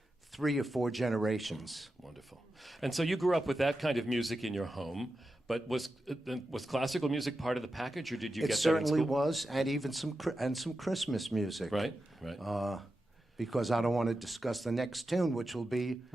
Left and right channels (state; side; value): normal; both; correlation 0.90